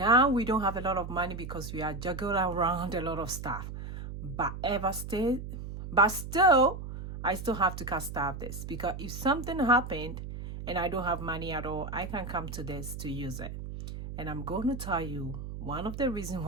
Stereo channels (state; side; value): noise; right; hum, 8 dB below the sound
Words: we don't have a lot of money because we are juggling around a lot of stuff. But still, I still have to cast off this because if something happened and I don't have money at all, I can come to this to use it. And I'm going to tell you one of the reasons